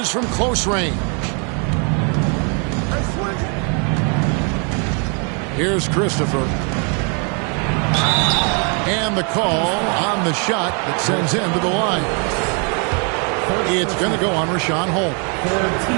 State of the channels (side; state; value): left; quieter; 36.8 dB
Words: from close range. Here's Christopher. And the call on the shot that sends him to the line. It's going to go on Rashawn Holmes.